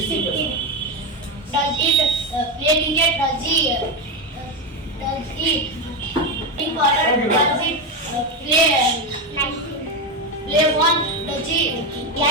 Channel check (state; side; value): normal; both; correlation 0.12